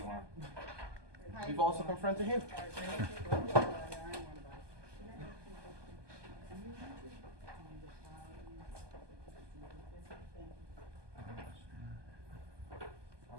want. We've also confronted him.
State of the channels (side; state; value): left; late; 1.2 ms